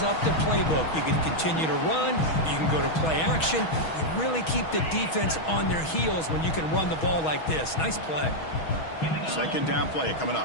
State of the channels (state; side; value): late; right; 6.3 ms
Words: up the playbook. You can continue to run. You can go to play action. You really keep the defense on their heels when you can run the ball like this. Nice play. Second down play coming